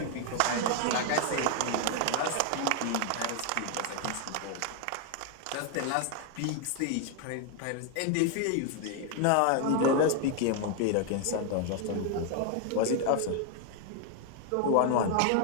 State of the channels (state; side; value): different; both; correlation 0.01